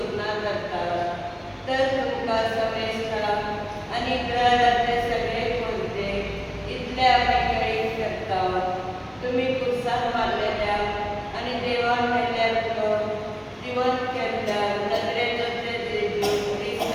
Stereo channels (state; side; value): identical; both; correlation 1.00